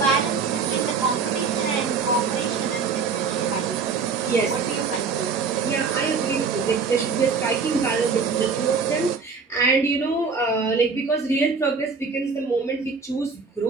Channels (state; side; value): quieter; left; 5.1 dB